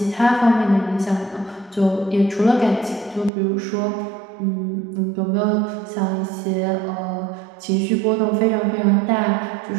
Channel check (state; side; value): drops out; left; at 3.3 s